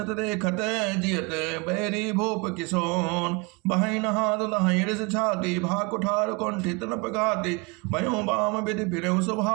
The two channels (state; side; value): quieter; left; 29.1 dB